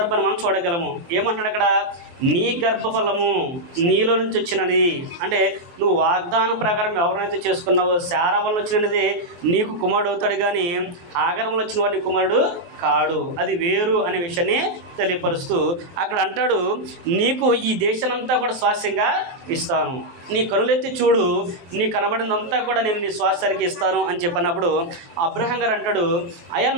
మనం చూడగలము. ఏమంటాడు అక్కడ? నీ గర్భఫలము నీలో నుంచి వచ్చినది. అంటే నువ్వు వాగ్దానం ప్రకారం ఎవరైతే చేసుకున్నావో శారా వల్ల వచ్చినది నీకు కుమారుడు అవుతాడు, కానీ హాగర్ వల్ల వచ్చిన వాడి కుమారుడు కాడు, అది వేరు అనే విషయాన్ని తెలియపరుస్తూ అక్కడ అంటాడు, నీకు ఈ దేశానంతా కూడా స్వాస్యంగా ఇస్తాను, నీ కనులెత్తి చూడు, నీ కనబడినంతా కూడా నేను నీ స్వాస్థ్యానికి ఇస్తాను అని చెప్పినప్పుడు అబ్రహాం గారు అంటాడు, అయ్యా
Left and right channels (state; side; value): late; left; 23 ms